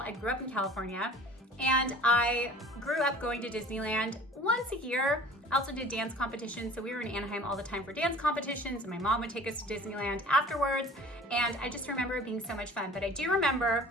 grew up in California, and I grew up going to Disneyland once a year. I also did dance competitions, so we were in Anaheim all the time for dance competitions, and my mom would take us to Disneyland afterwards, and I just remember it being so much fun. But I do remember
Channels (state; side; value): normal; both; correlation 0.46